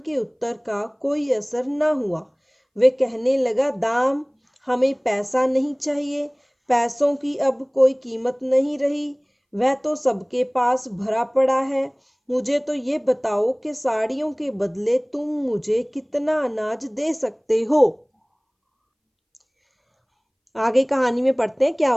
उत्तर का कोई असर न हुआ। वे कहने लगा, दाम, हमें पैसा नहीं चाहिए, पैसों की अब कोई कीमत नहीं रही, वह तो सबके पास भरा पड़ा है। मुझे तो ये बताओ कि साड़ियों के बदले तुम मुझे कितना अनाज दे सकते हो। आगे कहानी में पढ़ते हैं क्या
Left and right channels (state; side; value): identical; both; correlation 1.00